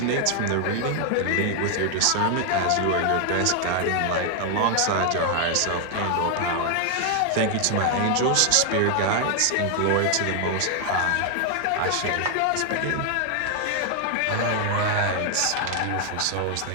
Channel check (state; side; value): different; both; correlation 0.00